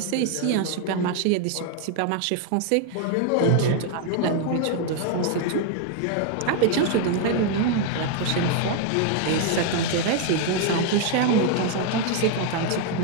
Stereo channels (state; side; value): different; both; correlation 0.00